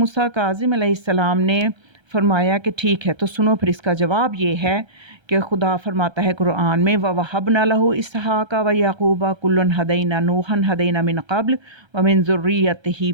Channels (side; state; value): left; late; 1.3 ms